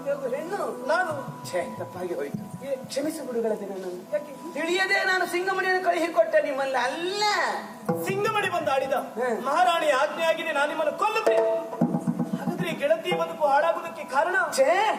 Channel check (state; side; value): identical; both; correlation 1.00